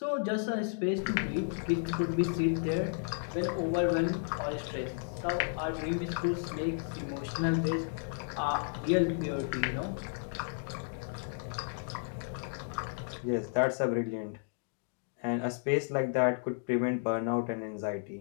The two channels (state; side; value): silent; right; digital silence